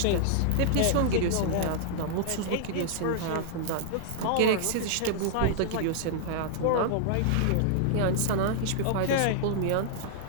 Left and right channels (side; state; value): both; different; correlation -0.01